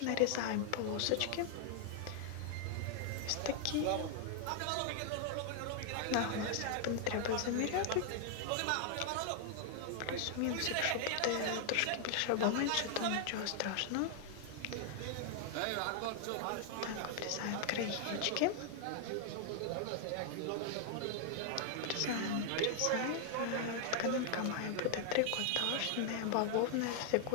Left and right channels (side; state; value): both; different; correlation 0.00